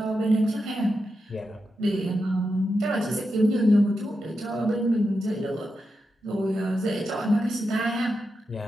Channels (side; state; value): both; normal; correlation 0.88